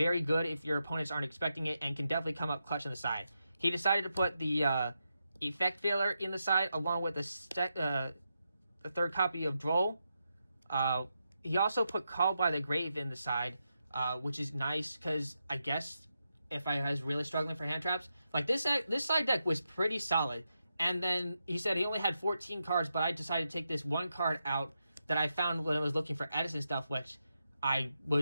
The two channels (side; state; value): both; inverted; correlation -0.86